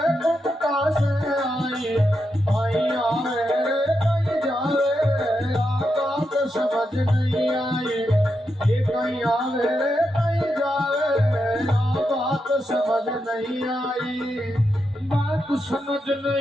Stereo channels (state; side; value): normal; both; correlation 0.85